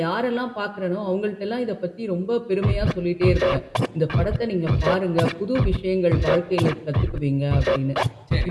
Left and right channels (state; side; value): identical; both; correlation 1.00